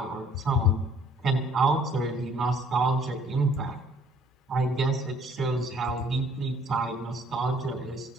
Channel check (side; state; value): both; normal; correlation 0.59